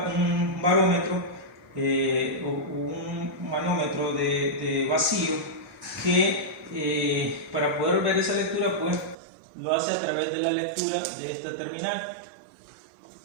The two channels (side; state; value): left; drops out; at 9.2 s